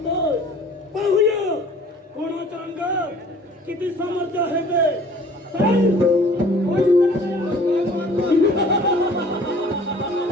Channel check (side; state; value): both; normal; correlation 0.51